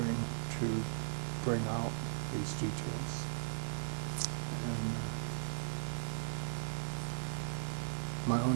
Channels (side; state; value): left; silent; digital silence